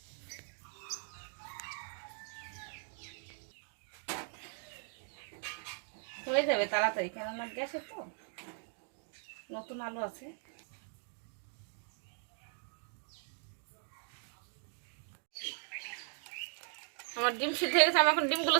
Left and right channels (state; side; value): silent; left; 52 dB below the other